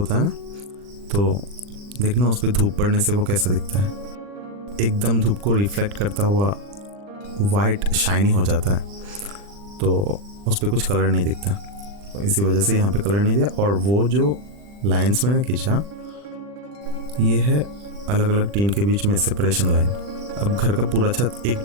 है ना, तो देखना उस पर धूप पड़ने से वो कैसा दिखता है, एकदम धूप को रिफ्लेक्ट करता हुआ वाइट शाइनी हो जाता है, तो उस पर कुछ कलर नहीं दिखता, तो इसी वजह से यहाँ पे कलर नहीं दिया। और वो जो लाइंस मैंने खींचा ये है अलग अलग टीन के बीच में सेपरेशन लाइन। अब घर का पूरा छत एक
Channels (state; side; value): late; left; 40 ms